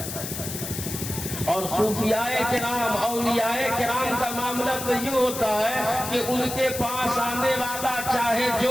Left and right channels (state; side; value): noise; left; hiss, 7 dB below the sound